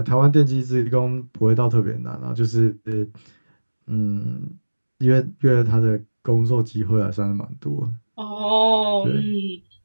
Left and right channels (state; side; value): inverted; both; correlation -1.00